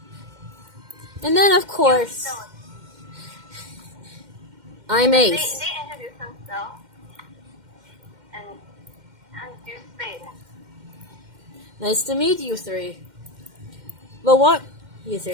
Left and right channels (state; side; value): late; left; 2.1 ms